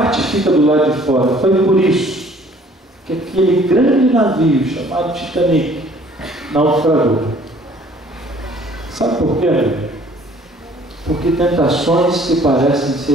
fica do lado de fora. Foi por isso que aquele grande navio chamado Titanic naufragou. Sabe por quê? Porque tentações que parecem ser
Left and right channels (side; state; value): both; normal; correlation 0.56